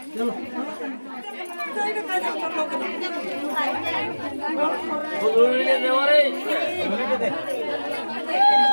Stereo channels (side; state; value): both; inverted; correlation -1.00